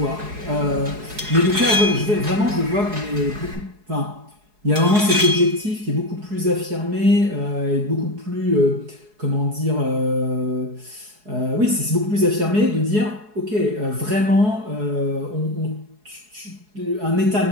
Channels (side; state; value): left; late; 4.7 ms